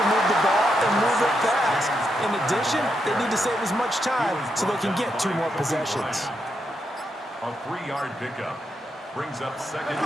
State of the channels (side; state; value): both; normal; correlation 0.82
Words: move the ball and move it fast. In addition, they need to save as much time so they can get 2 more possessions. A 3-yard pickup brings up 2nd